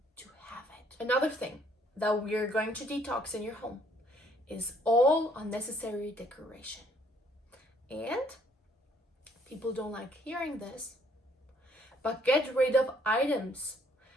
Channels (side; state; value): both; normal; correlation 0.64